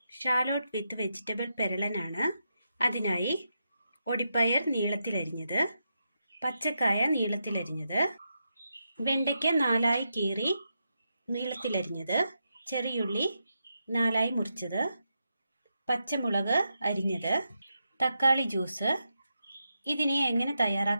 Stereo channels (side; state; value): both; inverted; correlation -0.85